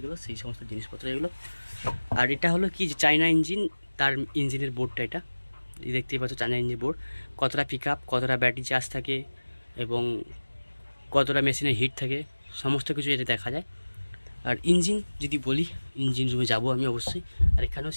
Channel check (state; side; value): inverted; both; correlation -1.00